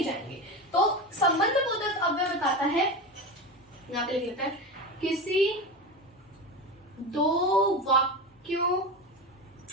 जाएंगे। तो संबंध बोधक अव्यय बताता है, यहाँ पे लिख लेते हैं, किसी 2 वाक्यों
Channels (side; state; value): both; normal; correlation 0.23